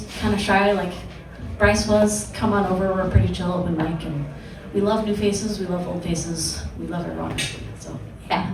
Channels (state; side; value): identical; both; correlation 1.00